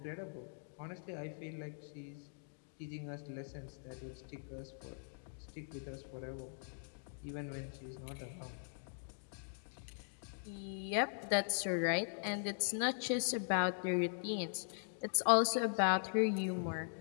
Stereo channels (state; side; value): silent; right; digital silence